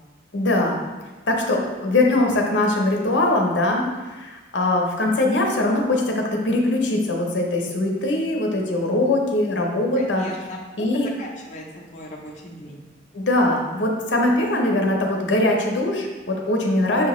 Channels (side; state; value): both; normal; correlation 0.34